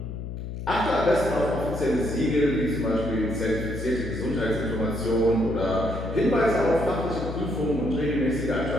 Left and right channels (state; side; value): noise; left; hum, 7 dB below the sound